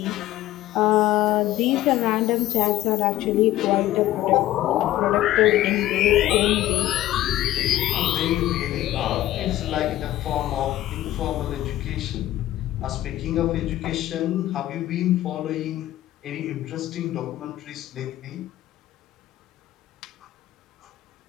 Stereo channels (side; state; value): right; quieter; 14.7 dB